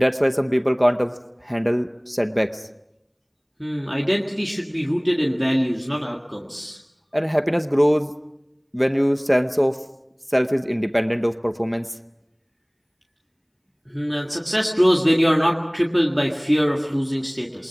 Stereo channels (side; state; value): both; identical; correlation 1.00